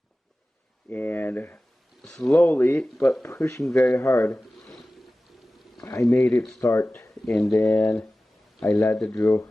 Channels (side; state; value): both; normal; correlation 0.96